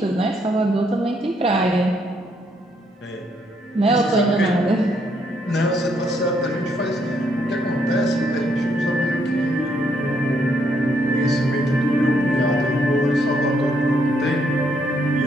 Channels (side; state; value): both; normal; correlation 0.73